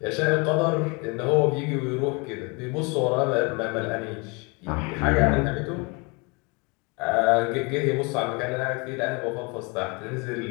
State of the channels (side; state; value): right; quieter; 29.6 dB